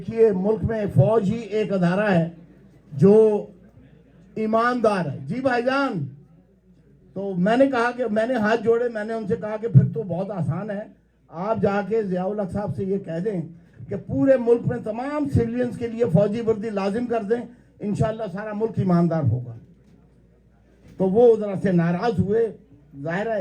ملک میں فوج ہی ایک ادارہ ہے جو ایماندار ہے. جی بھائی جان, تو میں نے کہا کہ میں نے ہاتھ جوڑے, میں نے ان سے کہا کہ پھر تو بہت آسان ہے, آپ جا کے ضیاء الحق صاحب سے یہ کہہ دیں کہ پورے ملک میں تمام سویلینز کے لیے فوجی وردی لازم کر دیں, انشاءاللہ سارا ملک ایماندار ہوگا. تو وہ ذرا سے ناراض ہوئے, ظاہر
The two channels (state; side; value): identical; both; correlation 1.00